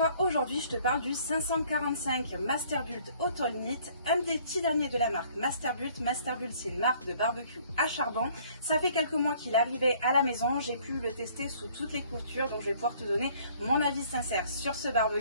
aujourd'hui je te parle du 545 Masterbuilt Autolnit, un des petits derniers de la marque Masterbuilt. Masterbuilt, c'est une marque de barbecue à charbon. Ça fait quelques mois qu'il est arrivé à la maison, j'ai pu le tester sous toutes les coutures, donc je vais pouvoir te donner mon avis sincère sur ce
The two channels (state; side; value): inverted; both; correlation -0.58